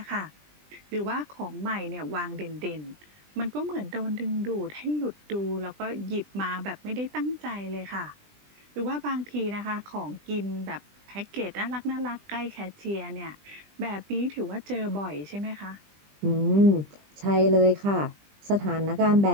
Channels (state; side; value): late; left; 20 ms